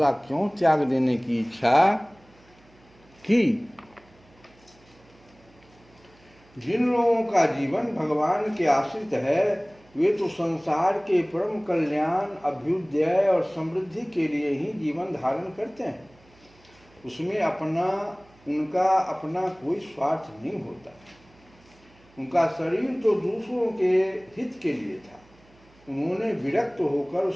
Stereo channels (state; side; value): noise; right; hum, 29 dB below the sound